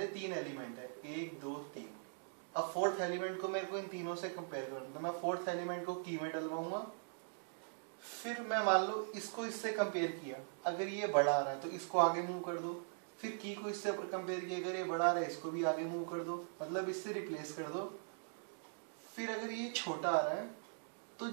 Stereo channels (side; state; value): left; silent; digital silence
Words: 3 एलिमेंट है, 1 2 3। अब फोर्थ एलिमेंट को मेरे को इन तीनों से कंपेयर करना, तो मैं फोर्थ एलिमेंट को की में डलवाऊंगा। फिर मैं मान लो इसको इससे कंपेयर किया, अगर ये बड़ा आ रहा है तो इसको आगे मूव कर दो। फिर की को इससे कंपेयर किया, अगर ये बड़ा आ रहा है इसको भी आगे मूव कर दो, मतलब इससे रिप्लेस कर दो। फिर अगर ये छोटा आ रहा है तो